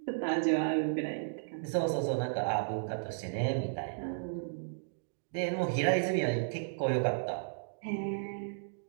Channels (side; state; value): left; silent; digital silence